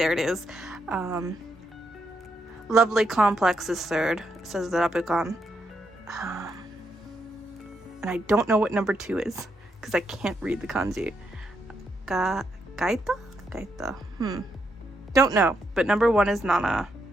it is. Lovely Complex is 3rd, says the Rapukan. And I don't know what number 2 is, because I can't read the kanji. Gaita? Don't know, but number 1 is Nana.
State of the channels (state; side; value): normal; both; correlation 0.80